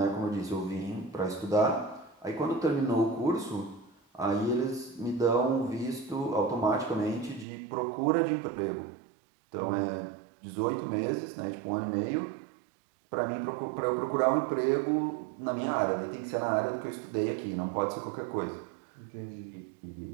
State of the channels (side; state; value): left; drops out; at 7.5 s